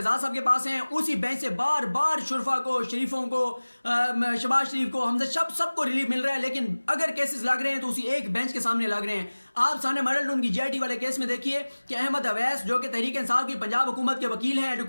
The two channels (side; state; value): both; inverted; correlation -1.00